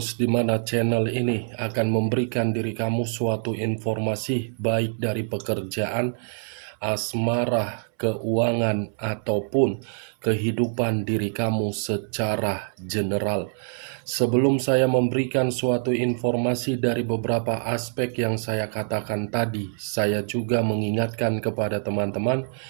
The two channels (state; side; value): silent; left; 62 dB below the other